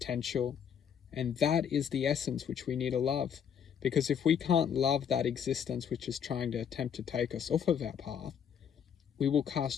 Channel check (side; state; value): right; quieter; 7.9 dB